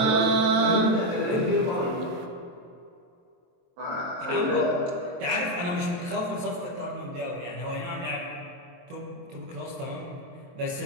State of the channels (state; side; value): late; left; 23 ms